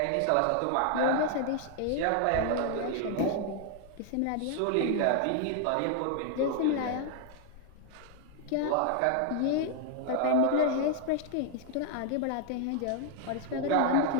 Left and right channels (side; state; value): both; different; correlation 0.00